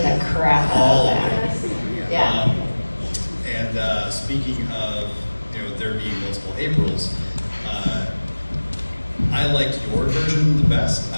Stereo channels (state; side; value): inverted; both; correlation -1.00